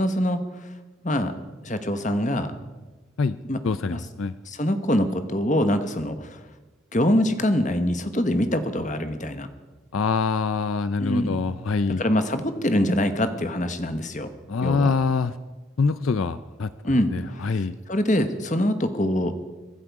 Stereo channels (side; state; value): both; normal; correlation 0.69